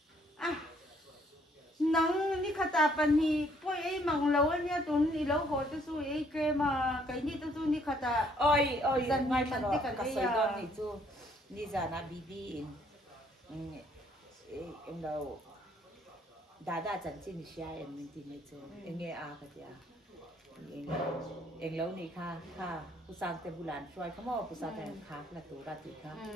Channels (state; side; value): normal; both; correlation 0.65